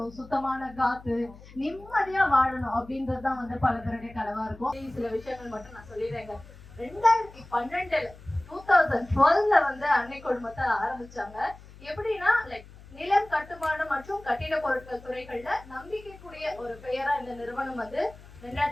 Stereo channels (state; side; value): noise; left; hum, 20 dB below the sound